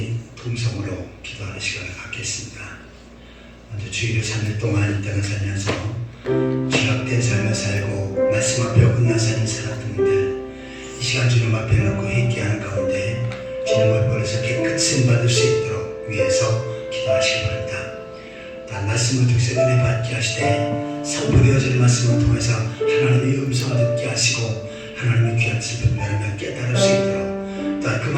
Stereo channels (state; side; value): identical; both; correlation 1.00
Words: 통성으로 기도하는 시간을 갖겠습니다. 먼저 주일을 3일 동안 이 땅을 살면서 죄악된 삶을 살고 말씀 앞에 어긋난 삶을 살았던 분들, 이 시간 주님 앞에 놓고 회개하는 가운데 주님을 버려서 깨끗이 받을 수 있도록 위해서 기도하시기 바랍니다. 단 말씀을 통해서 은혜 받게 하시되 선포되어지는 말씀을 통해서 하나님의 음성을 듣게 하시고 하나님의 귀한 뜻을 분별하며 깨달을 수 있도록, 또한 그